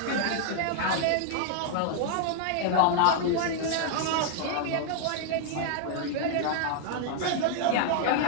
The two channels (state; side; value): different; both; correlation 0.00